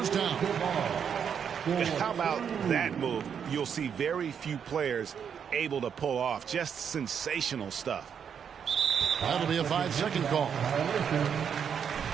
down. How about that move? You'll see very few players able to pull off. Just sensational stuff. That'll be a 5-second call.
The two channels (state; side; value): quieter; left; 7.6 dB